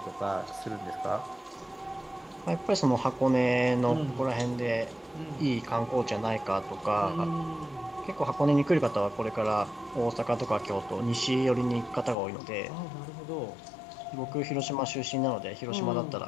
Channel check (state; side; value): drops out; right; at 12.2 s